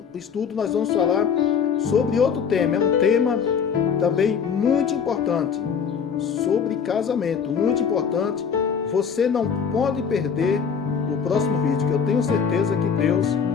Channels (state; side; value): quieter; right; 6.8 dB